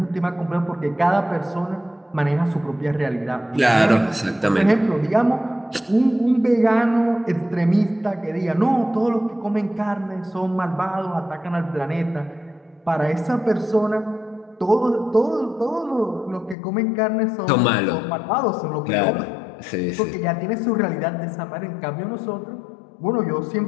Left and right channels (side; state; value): right; drops out; at 16.6 s